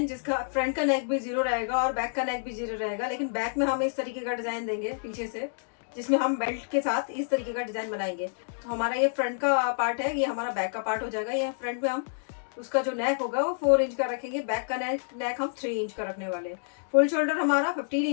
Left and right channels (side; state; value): right; silent; digital silence